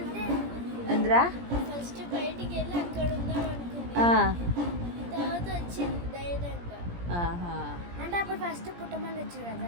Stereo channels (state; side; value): late; left; 17 ms